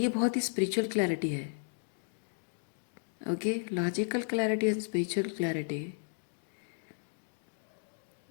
बहुत ही स्पिरिचुअल क्लैरिटी है। Okay, logical clarity and spiritual clarity,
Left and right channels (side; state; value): right; silent; 55 dB below the other